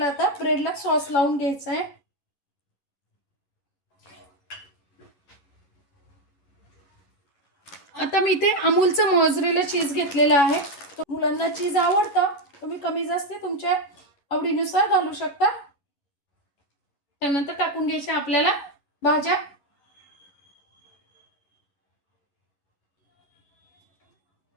आता ब्रेडला सॉस लावून घ्यायचा आहे. आता मी इथे अमूलचं मोझरेला चीज घेतलेलं आहे. मुलांना चीज आवडतं, तुम्ही कमी जास्त तुमच्या आवडीनुसार घालू शकता. त्यानंतर टाकून घ्यायच्या आपल्याला भाज्या.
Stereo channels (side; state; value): right; late; 11 ms